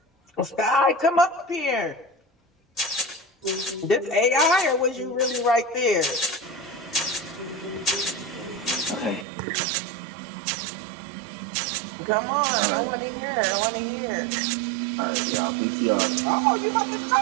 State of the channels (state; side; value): drops out; left; at 9.2 s